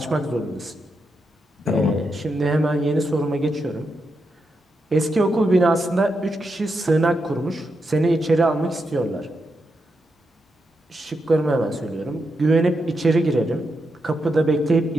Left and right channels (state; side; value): normal; both; correlation 0.84